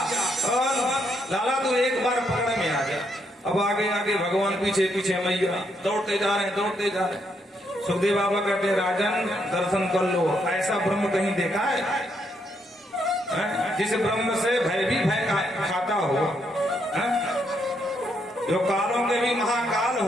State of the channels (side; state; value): both; normal; correlation 0.76